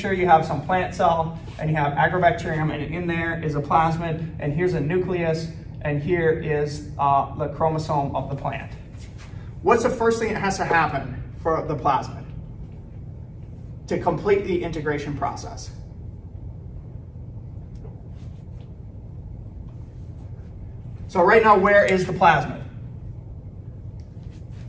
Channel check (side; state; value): both; identical; correlation 1.00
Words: you have some plant cell and you have Agrobacterium, and in there is a plasmid, and here's a nucleus, and here is the chromosome of the plant. What's the first thing that has to happen for the plasmid to complete the integration process? So right now, where is the plasmid?